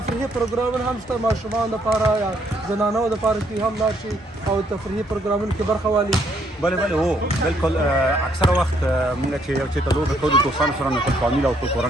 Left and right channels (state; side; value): normal; both; correlation 0.70